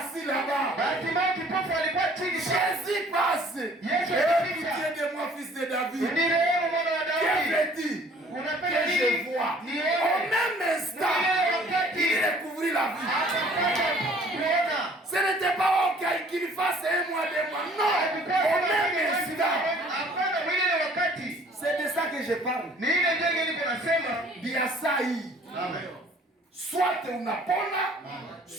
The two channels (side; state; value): both; normal; correlation 0.55